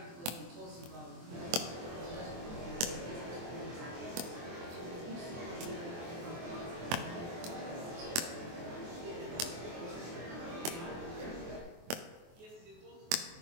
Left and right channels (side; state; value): left; late; 23 ms